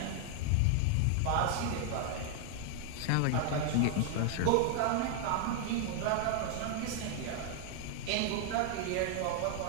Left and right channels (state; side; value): different; both; correlation 0.00